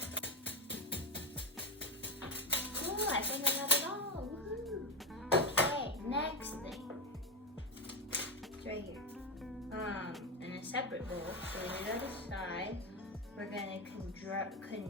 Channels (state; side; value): normal; both; correlation 0.12